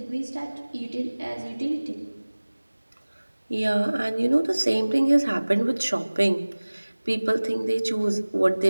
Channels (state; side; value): inverted; both; correlation -1.00